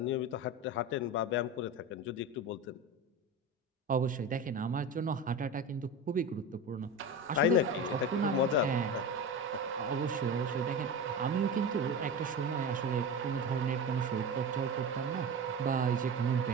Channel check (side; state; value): both; normal; correlation 0.25